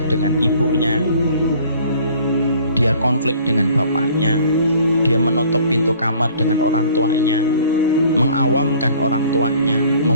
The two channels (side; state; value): both; inverted; correlation -0.53